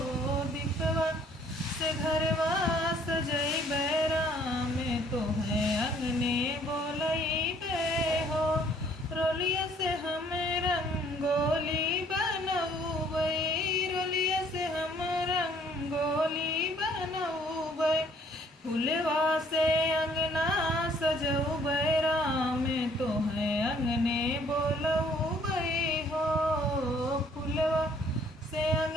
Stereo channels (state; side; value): normal; both; correlation 0.61